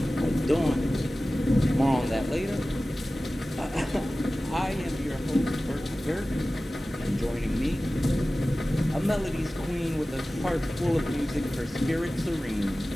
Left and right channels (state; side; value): normal; both; correlation 0.96